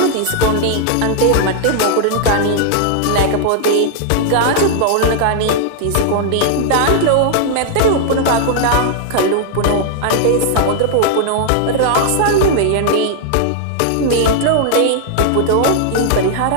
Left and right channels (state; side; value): different; both; correlation 0.00